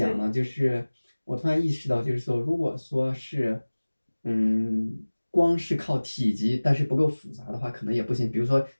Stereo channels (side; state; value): both; inverted; correlation -1.00